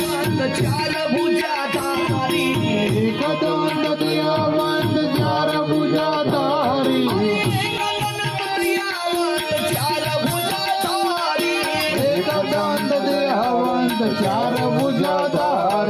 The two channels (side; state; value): both; identical; correlation 1.00